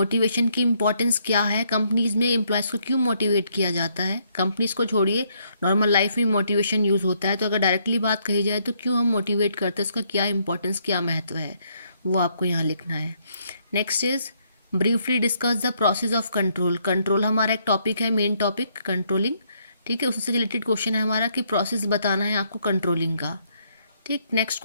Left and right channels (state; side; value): inverted; both; correlation -0.71